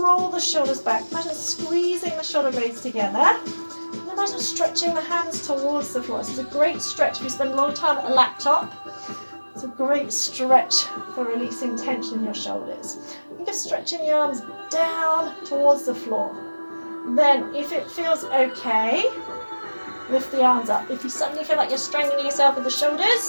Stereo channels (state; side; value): inverted; both; correlation -1.00